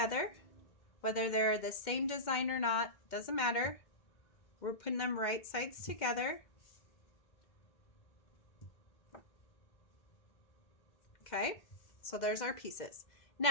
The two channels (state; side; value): late; right; 2.1 ms